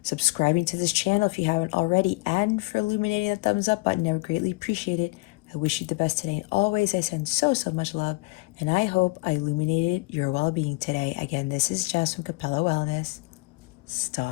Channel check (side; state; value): right; quieter; 25.1 dB